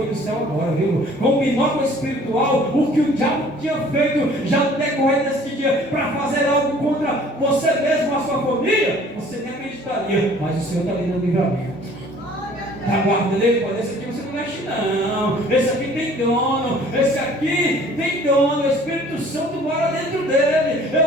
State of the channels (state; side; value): normal; both; correlation 0.53